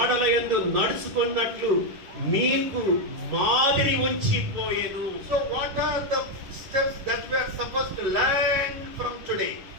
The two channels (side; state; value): left; late; 11 ms